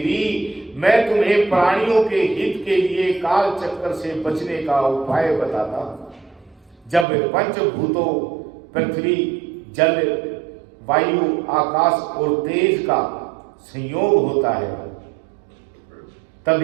मैं तुम्हें प्राणियों के हित के लिए काल चक्कर से बचने का उपाय बताता हूं। जब पंचभूतों पृथ्वी, जल, वायु, आकाश और तेज का संयोग होता है,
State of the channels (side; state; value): left; drops out; at 7.1 s